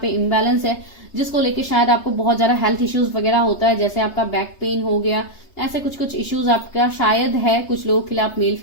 पे इम्बैलेंस है, जिसको लेके शायद आपको बहुत ज्यादा हेल्थ इश्यूज वगैरह होता है, जैसे आपका बैक पेन हो गया, ऐसे कुछ कुछ इश्यूज आपका शायद है। कुछ लोगों के लिए आप मेल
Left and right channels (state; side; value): late; right; 3.3 ms